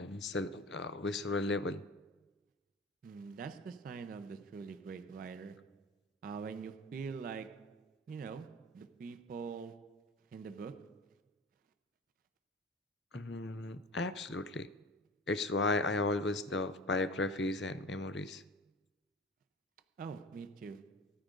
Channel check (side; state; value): both; normal; correlation 0.36